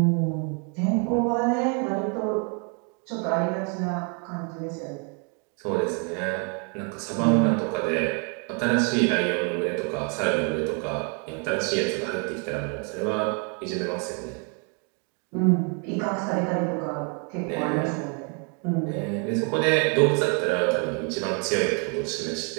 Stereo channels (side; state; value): left; quieter; 36.9 dB